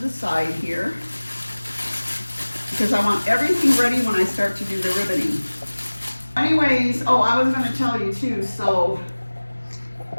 side here, because I want everything ready when I start to do the ribboning. Anyways, oh, I was going to tell you too, so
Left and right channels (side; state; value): both; inverted; correlation -1.00